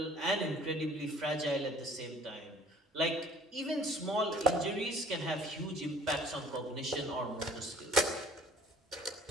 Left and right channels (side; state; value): both; normal; correlation 0.53